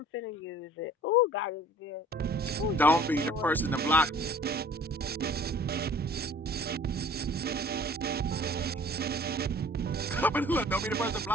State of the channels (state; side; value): normal; both; correlation 0.50